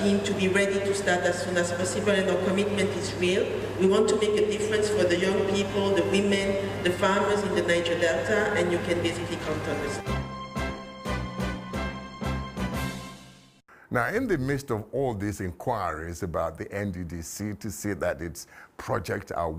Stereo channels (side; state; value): both; identical; correlation 1.00